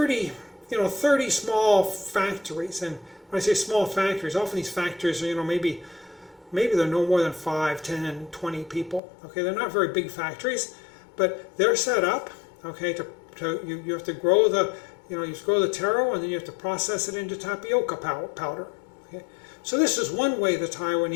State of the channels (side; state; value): right; drops out; at 9.0 s